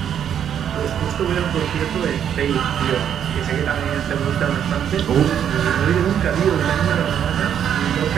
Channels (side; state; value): left; quieter; 9.1 dB